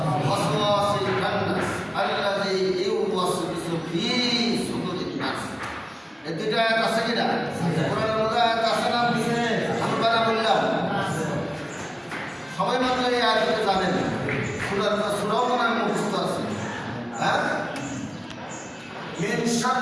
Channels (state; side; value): identical; both; correlation 1.00